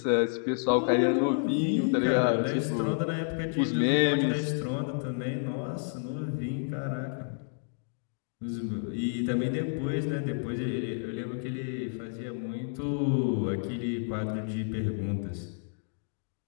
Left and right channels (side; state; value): right; silent; digital silence